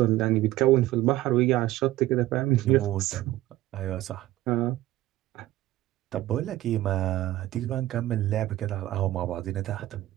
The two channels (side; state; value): left; quieter; 15.8 dB